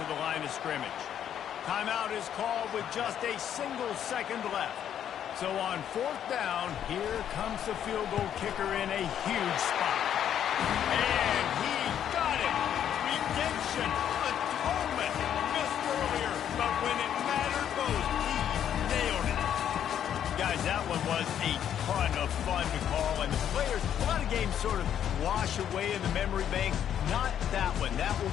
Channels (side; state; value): right; quieter; 9.7 dB